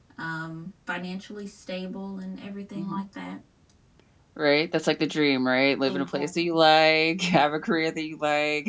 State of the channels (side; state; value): both; identical; correlation 1.00